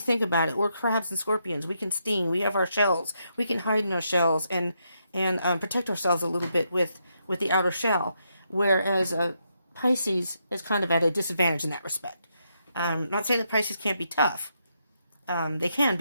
about it, we're crabs and scorpions. We can sting. We have our shells. We can hide in our shells and protect ourselves a little bit with the outer shell. Whereas Pisces is kind of at a disadvantage in that respect. Not saying that Pisces can't be tough. They can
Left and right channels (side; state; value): both; inverted; correlation -0.80